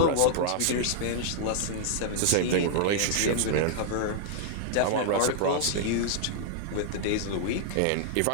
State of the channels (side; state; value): both; different; correlation -0.01